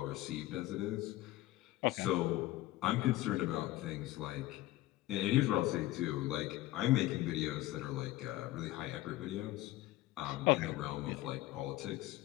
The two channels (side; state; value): right; quieter; 16.7 dB